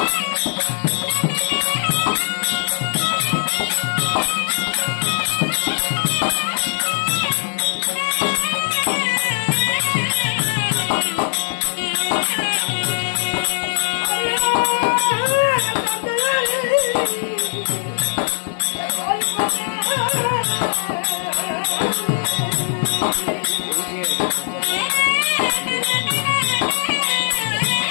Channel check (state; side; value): silent; right; 61 dB below the other